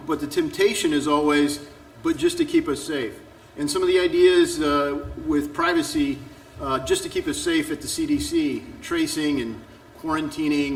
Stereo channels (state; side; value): identical; both; correlation 1.00